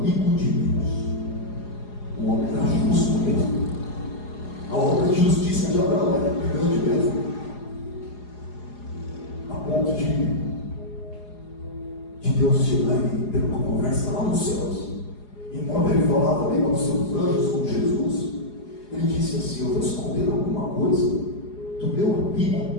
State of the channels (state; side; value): late; right; 4.8 ms